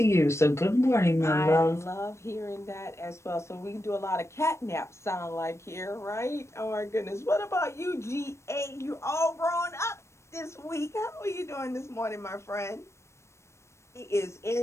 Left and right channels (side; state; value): right; late; 0.13 ms